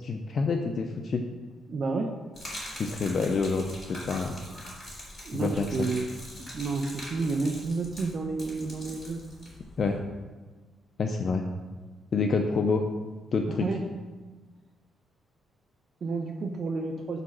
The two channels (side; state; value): both; normal; correlation 0.76